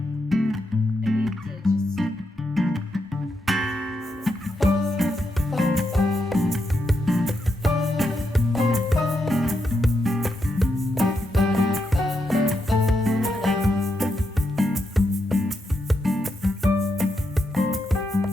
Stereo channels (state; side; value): normal; both; correlation 0.82